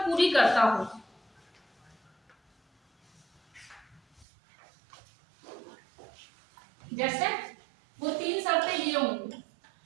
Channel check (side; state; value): left; drops out; at 4.2 s